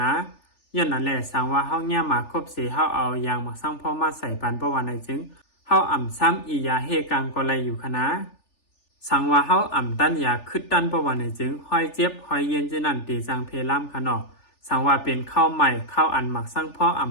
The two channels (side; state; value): right; late; 3.4 ms